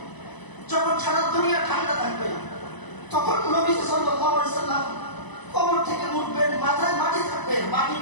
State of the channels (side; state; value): right; late; 1.0 ms